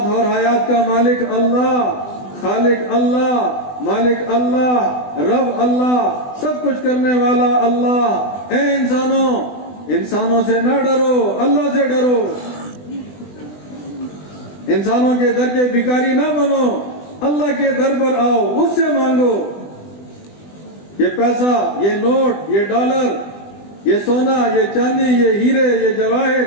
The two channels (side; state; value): right; late; 20 ms